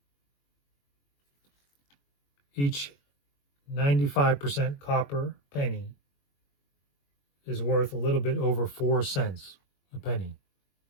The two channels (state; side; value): late; right; 21 ms